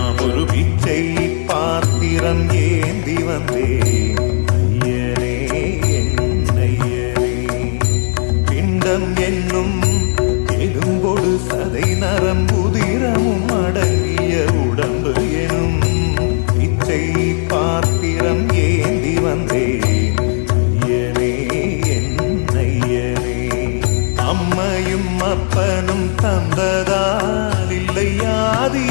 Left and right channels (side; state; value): right; silent; 59 dB below the other